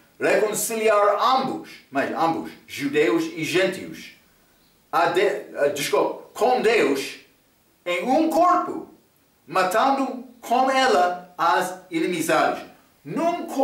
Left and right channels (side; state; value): both; identical; correlation 1.00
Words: reconciliar ambos, judeus e gentios, com Deus em um corpo, matando com ela as inimizades. Num